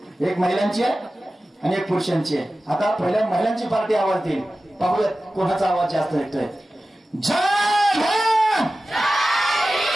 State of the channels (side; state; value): both; normal; correlation 0.95